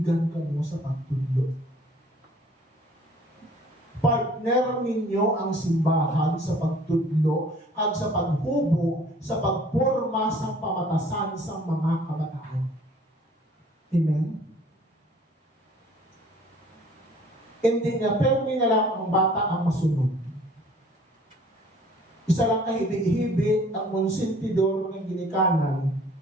ka mo sa pagtudlo. Partner ninyo ang simbahan sa pagtudlo at sa paghubog, sa pagporma sa pamatasan sa mga kabataan. Amen? Hindi nga, pero may na lang ang bata ang masunod. Isa lang kahibig-hibig ang monsintidor ng ginikanan,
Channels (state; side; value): normal; both; correlation 0.54